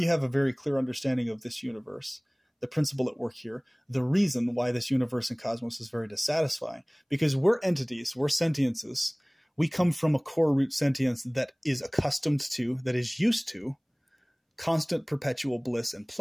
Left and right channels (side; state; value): both; identical; correlation 1.00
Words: have a very clear understanding of this universe, the principle at work here, the reason why this universe and cosmos is very dissatisfying. Because we're entities, we're sentiences. We come from a core root sentience that is accustomed to, that is used to, constant perpetual bliss and